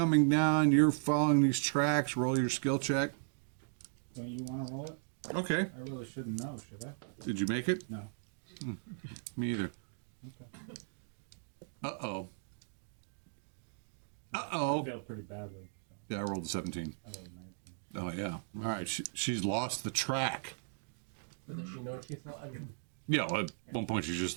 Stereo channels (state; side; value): silent; left; digital silence